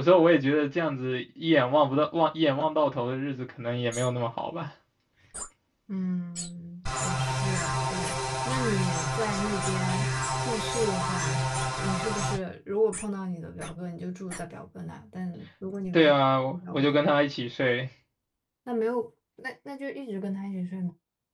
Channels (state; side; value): identical; both; correlation 1.00